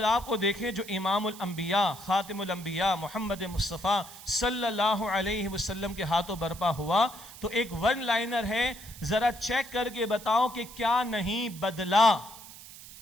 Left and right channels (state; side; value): noise; right; hiss, 16 dB below the sound